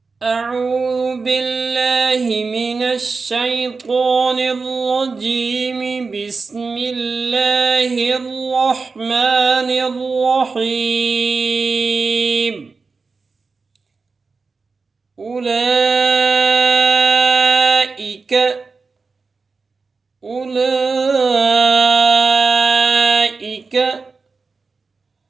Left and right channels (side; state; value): left; quieter; 4.4 dB